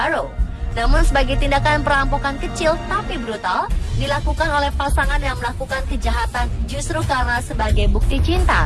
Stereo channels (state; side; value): identical; both; correlation 1.00